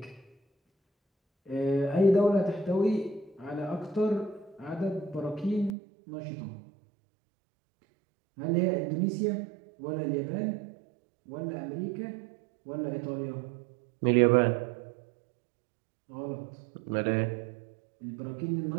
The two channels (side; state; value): left; drops out; at 5.8 s